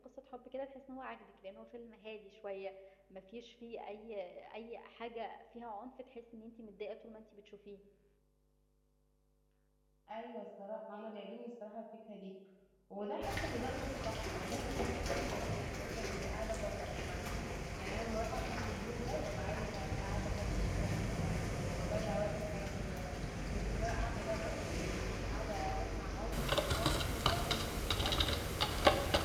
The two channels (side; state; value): both; identical; correlation 1.00